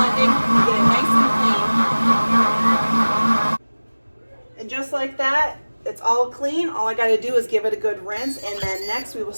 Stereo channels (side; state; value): both; inverted; correlation -1.00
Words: And just like that, it's all clean. All I got to do is give it a good rinse, and then next we will